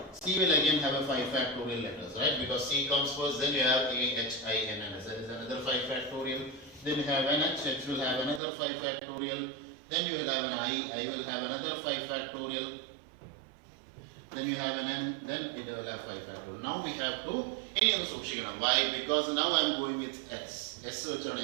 C will again have a 5 factorial letters, right? Because C comes first, then you have A, H, I, N and S. That is another 5 factorial. Then you have an H, H will have another 5 factorial. Then you will have an I will have another 5 factorial. Then you have an N, then it will have 5 factorial. Now we have to, why? Because now I am going with S.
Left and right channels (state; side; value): drops out; left; at 8.4 s